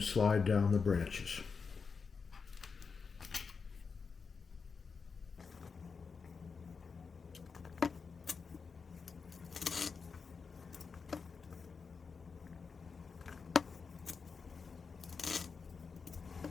slide down the branches.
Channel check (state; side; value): quieter; right; 5.2 dB